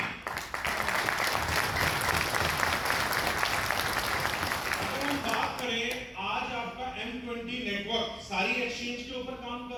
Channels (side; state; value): both; identical; correlation 1.00